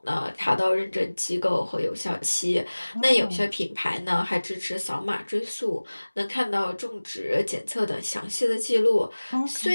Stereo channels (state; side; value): inverted; both; correlation -1.00